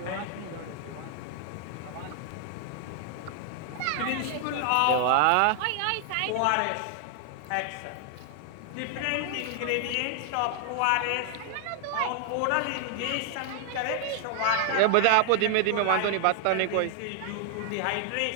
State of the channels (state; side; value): different; both; correlation 0.00